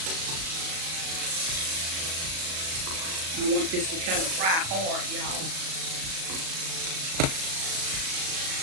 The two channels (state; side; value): late; left; 37 ms